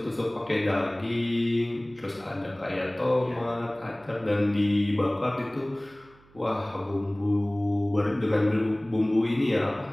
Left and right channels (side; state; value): right; noise; hum, 28 dB below the sound